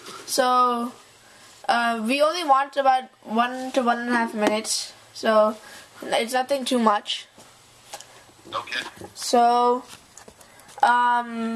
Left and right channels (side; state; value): both; identical; correlation 1.00